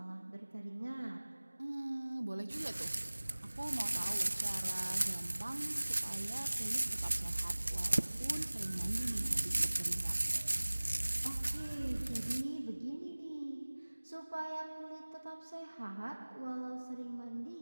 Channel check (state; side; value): inverted; both; correlation -1.00